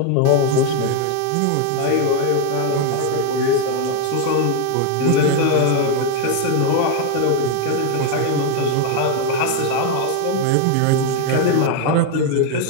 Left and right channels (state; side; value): different; both; correlation 0.01